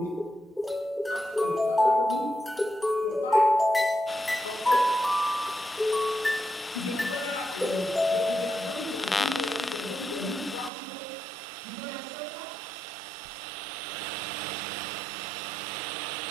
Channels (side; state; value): left; drops out; at 10.7 s